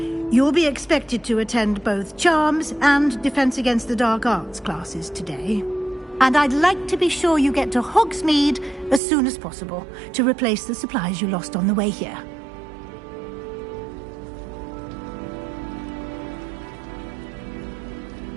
You'll be expected to attend both Charms and Defense Against the Dark Arts classes today. And I'd like to be sure you get to Hogsmeade as soon as possible to replace the supplies you lost on the way here.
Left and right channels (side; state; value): left; drops out; at 9.0 s